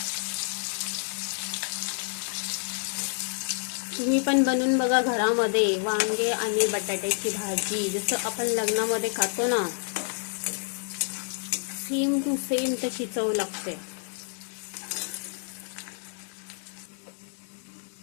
तुम्ही पण बनवून बघा घरामध्ये वांगे आणि बटाट्याची भाजी, जसं आपण लग्नामध्ये खातो ना, सेम टू सेम तशी चव लागते.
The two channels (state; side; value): silent; right; 59 dB below the other